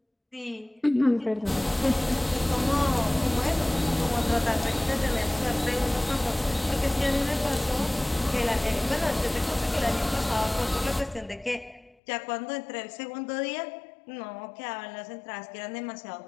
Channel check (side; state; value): right; drops out; at 12.0 s